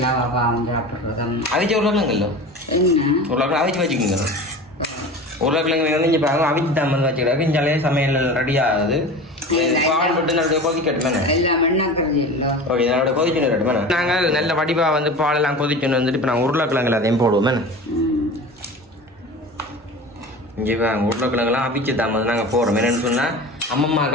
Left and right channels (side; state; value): both; normal; correlation 0.34